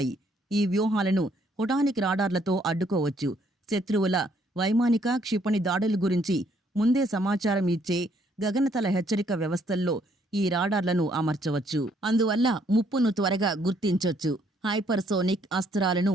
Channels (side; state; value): both; normal; correlation 0.68